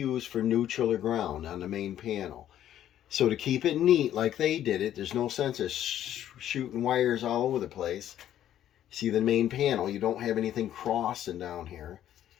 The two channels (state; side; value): quieter; right; 11.4 dB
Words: for neutral or ground on the main panel. So to keep it neat like they did it, there's no sense of shooting wires all over the place. See the main panel, you don't have anything crossing down here